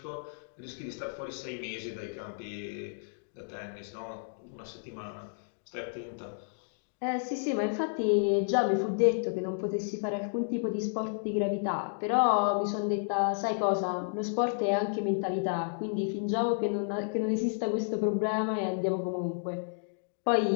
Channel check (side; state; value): right; silent; digital silence